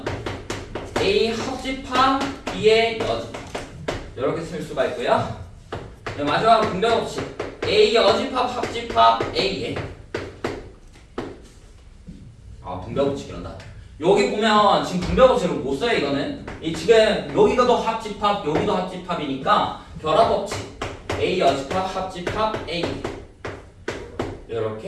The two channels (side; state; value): both; identical; correlation 1.00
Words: A 합집합 B의 여집합 이렇게 쓸 수가 있고요. 네, 마지막으로 분배 법칙 A 여집합 합집합 A의 분배 법칙이란다. 여기 보면 지금 분배 법칙을 못 써요. 이거는 이 지금 여기가도 합집합 여기도 합집합이니까 결합 법칙 A 여집합 합집합 A